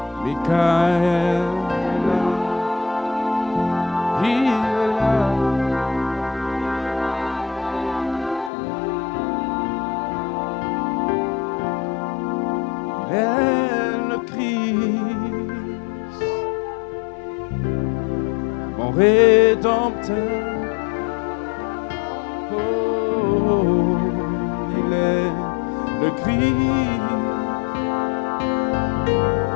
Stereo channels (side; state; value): right; drops out; at 8.5 s